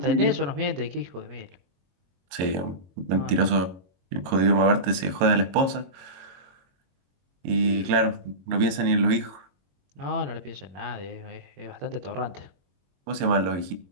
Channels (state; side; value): late; left; 22 ms